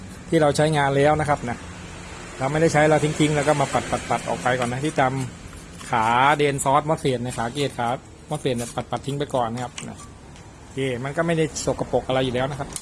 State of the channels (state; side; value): identical; both; correlation 1.00